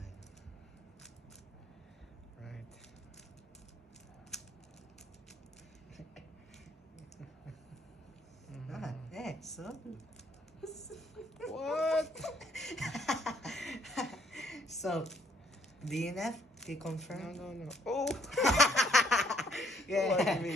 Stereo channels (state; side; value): normal; both; correlation 0.67